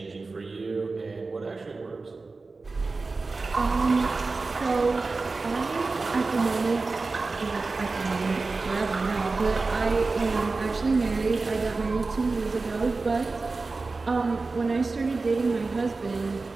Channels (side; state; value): left; quieter; 3.8 dB